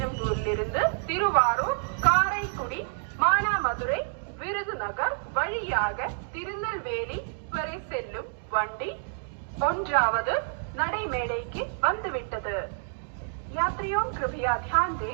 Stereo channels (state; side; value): silent; left; digital silence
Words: திருவாரூர், காரைக்குடி, மானாமதுரை, விருதுநகர் வழியாக திருநெல்வேலி வரை செல்லும் வண்டி 1வது நடைமேடைக்கு வந்துவிட்டது. यात्रियों कृपया ध्यान